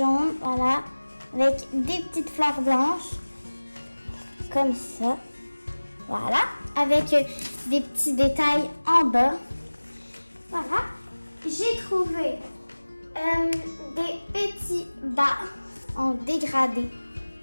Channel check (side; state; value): both; inverted; correlation -1.00